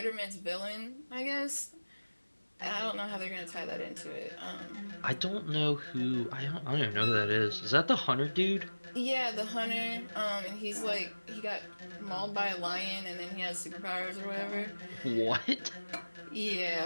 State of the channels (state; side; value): inverted; both; correlation -1.00